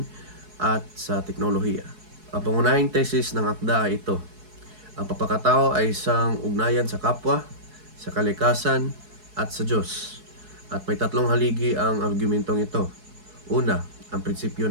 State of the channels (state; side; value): late; left; 4.7 ms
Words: at sa teknolohiya. Ang pangunahing tesis ng akda ay ito: ang pagkatao ay isang ugnayan sa kapwa, sa kalikasan, at sa Diyos. At may tatlong haligi ang argumentong ito. Una, ang prinsipyo